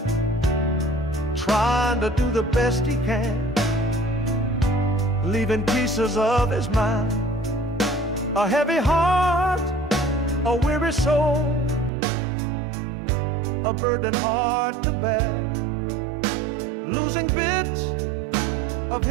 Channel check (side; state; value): left; drops out; at 11.9 s